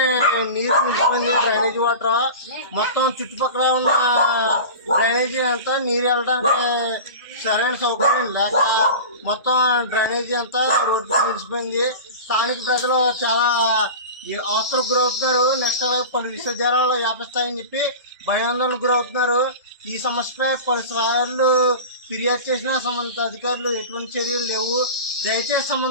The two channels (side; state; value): both; inverted; correlation -0.31